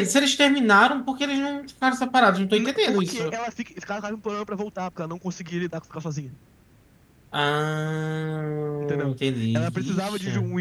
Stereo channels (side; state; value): both; identical; correlation 1.00